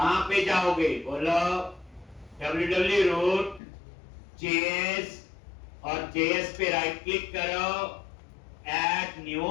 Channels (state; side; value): drops out; right; at 3.6 s